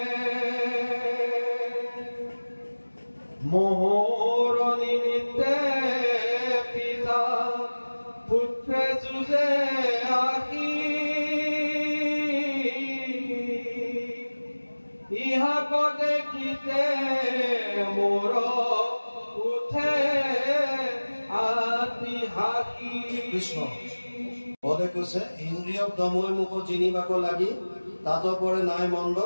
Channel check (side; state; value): both; inverted; correlation -1.00